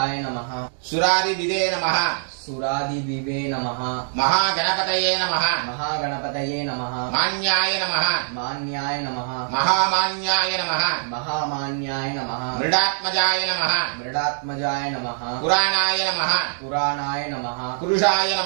नमः सुरादिविदे नमः सुरादिविवे नमः महागणपतये नमः महागणपतये नमः मान्याय नमः मान्याय नमः महामान्याय नमः महामान्याय नमः मृडात्मजाय नमः मृडात्मजाय नमः पुराणाय नमः पुराणाय नमः पुरुषाय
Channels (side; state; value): left; silent; 63 dB below the other